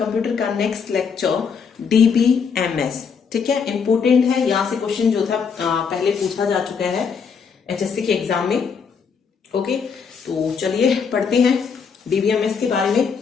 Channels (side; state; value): right; quieter; 6.1 dB